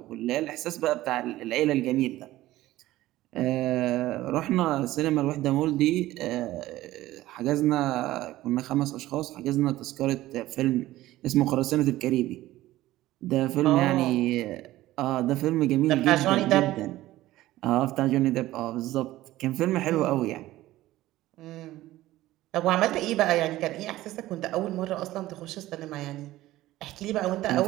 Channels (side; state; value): left; quieter; 16.0 dB